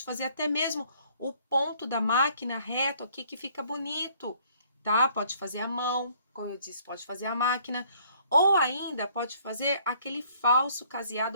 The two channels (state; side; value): inverted; both; correlation -0.61